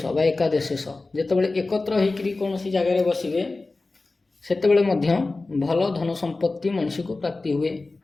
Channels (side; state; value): right; quieter; 3.4 dB